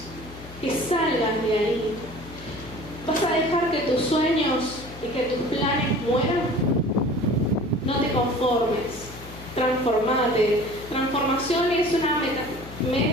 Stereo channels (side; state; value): left; noise; hum, 16 dB below the sound